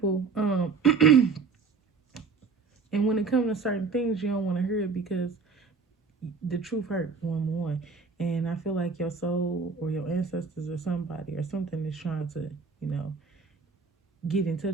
And when it comes to certain things, you don't want to hear it because the truth hurt, one. And I feel like your soul or your ancestors or somebody or something is trying to, you know, get in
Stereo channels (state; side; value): quieter; left; 4.9 dB